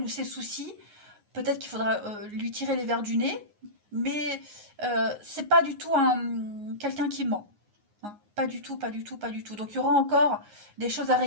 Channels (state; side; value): late; left; 9.6 ms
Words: ses soucis. Peut-être qu'il faudra lui tirer les verres du nez, mais c'est pas du tout quelqu'un qui ment. Hein. Pas du tout, pas du tout, pas du tout. Donc il y aura encore des choses à